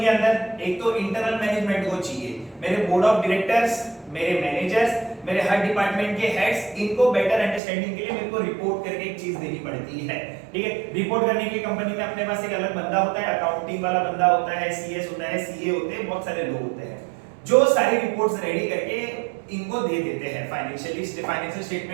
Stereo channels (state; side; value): drops out; left; at 7.6 s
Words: के अंदर? एक तो इंटरनल मैनेजमेंट को चाहिए, मेरे बोर्ड ऑफ डायरेक्टर्स, मेरे मैनेजर्स, मेरे हर डिपार्टमेंट के हेड्स, इनको बेटर अंडरस्टैंडिंग के लिए मेरे को रिपोर्ट करके एक चीज देनी पड़ती है, ठीक है। रिपोर्ट करने के लिए कंपनी में अपने पास एक अलग बंदा होता है, अकाउंटिंग वाला बंदा होता है, सीएस होता है, सीए होते हैं, बहुत सारे लोग होते हैं जो सारी रिपोर्ट्स रेडी करके इनको दे देते हैं। फाइनेंशियल